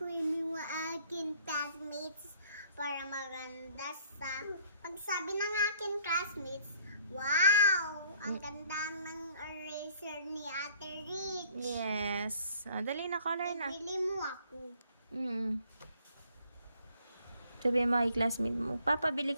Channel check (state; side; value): inverted; both; correlation -0.60